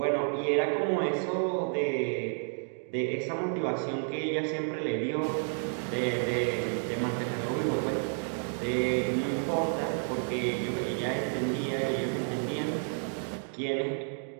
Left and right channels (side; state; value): left; silent; 57 dB below the other